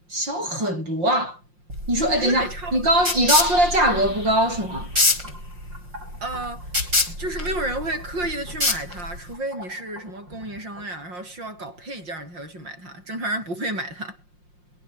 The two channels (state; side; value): late; left; 5.6 ms